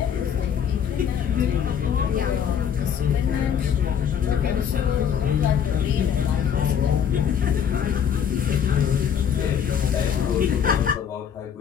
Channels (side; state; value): right; quieter; 8.2 dB